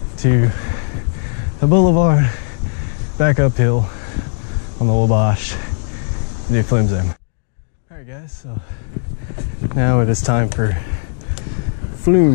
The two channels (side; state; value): right; silent; digital silence